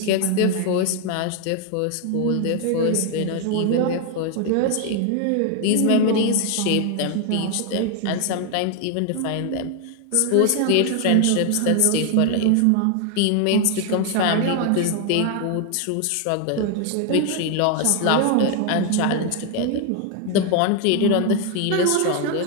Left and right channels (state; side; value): different; both; correlation 0.00